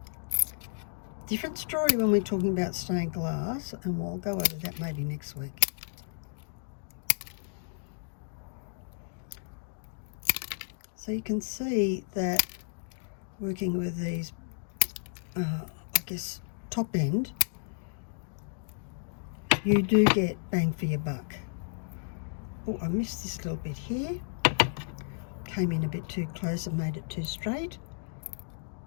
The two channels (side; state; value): right; silent; digital silence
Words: Different story when we're talking about stained glass, and we'll go over that maybe next week. So you can see that working with these, I guess, top end, you do get bang for your buck. Oh, I missed this little bit here. Came in a bit too close and made it too straight.